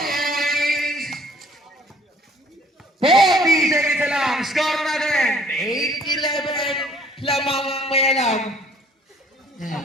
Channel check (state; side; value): normal; both; correlation 0.57